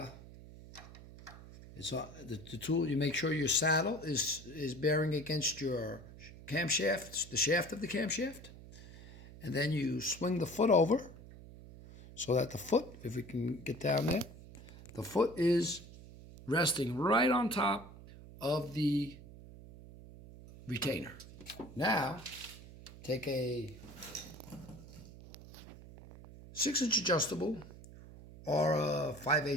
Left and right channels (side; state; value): right; noise; hum, 17 dB below the sound